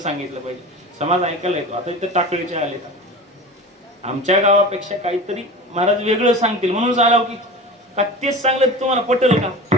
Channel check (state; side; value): normal; both; correlation 0.33